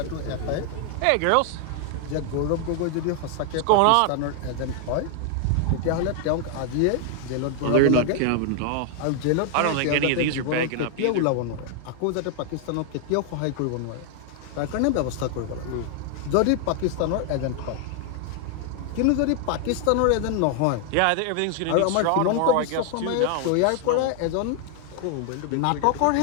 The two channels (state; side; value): different; both; correlation 0.00